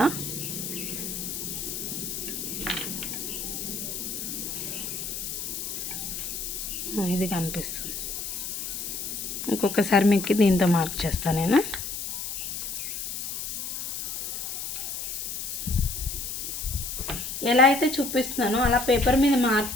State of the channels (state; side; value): noise; left; hiss, 5 dB below the sound